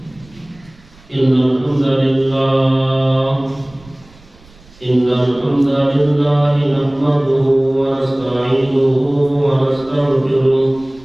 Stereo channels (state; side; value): noise; right; rumble, 26 dB below the sound